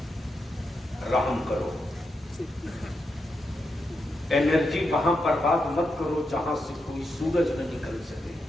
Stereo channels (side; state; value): both; normal; correlation 0.85